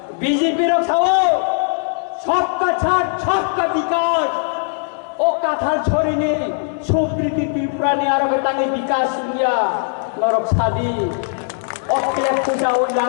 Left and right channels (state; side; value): silent; right; digital silence